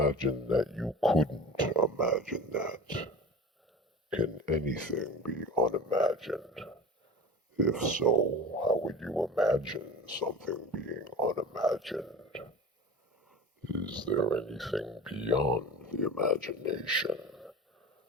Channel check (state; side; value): normal; both; correlation 0.34